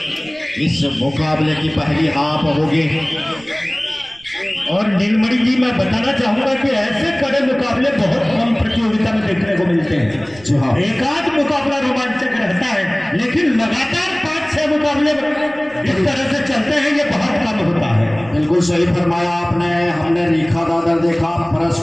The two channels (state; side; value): noise; right; rumble, 24 dB below the sound